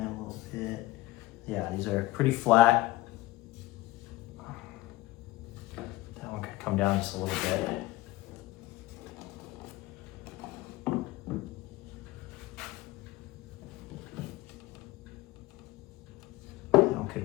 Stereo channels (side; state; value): right; quieter; 18.2 dB